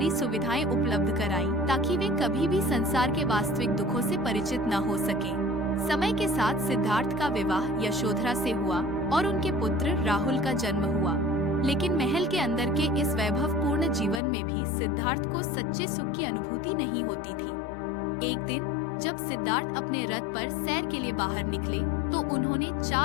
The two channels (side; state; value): right; drops out; at 14.2 s